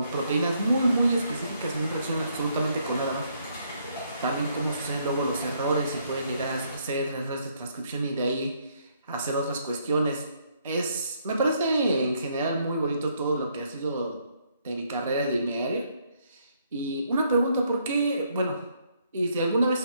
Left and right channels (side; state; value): both; inverted; correlation -0.71